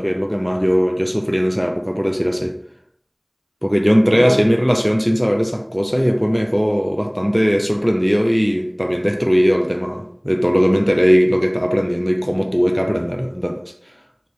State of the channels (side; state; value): both; identical; correlation 1.00